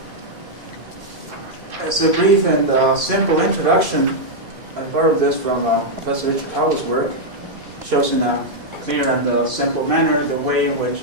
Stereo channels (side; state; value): left; late; 2.5 ms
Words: As a brief and simple introduction, I borrowed this from Professor Richard Howell's work. Shows in a clear and simple manner the way in which